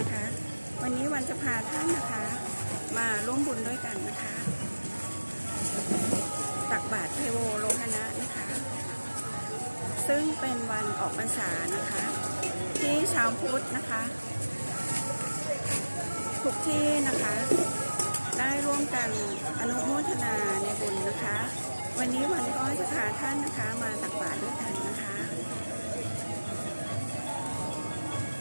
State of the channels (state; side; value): inverted; both; correlation -1.00